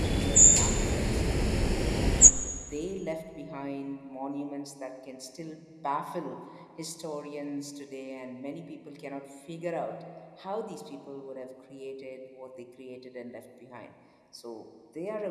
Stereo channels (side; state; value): both; identical; correlation 1.00